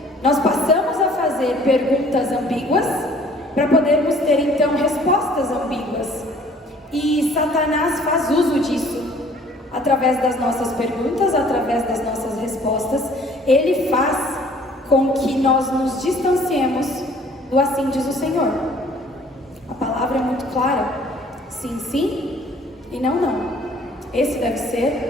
Nós passamos a fazer perguntas ambíguas para podermos ter então respostas ambíguas. E Satanás faz uso disso. Através das nossas perguntas, através das nossas respostas, ele faz com que nós nos distanciemos do assim diz o Senhor. A palavra é muito clara: sim, sim e não, não. Esse deve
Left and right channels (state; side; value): normal; both; correlation 0.55